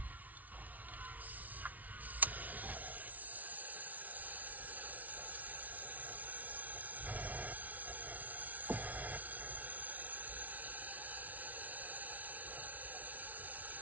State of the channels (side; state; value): left; late; 0.074 ms